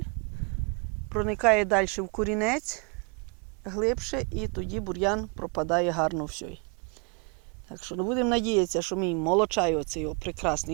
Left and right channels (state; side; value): quieter; left; 33.4 dB